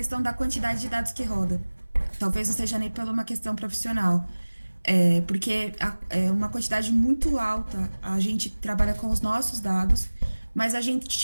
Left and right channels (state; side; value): inverted; both; correlation -1.00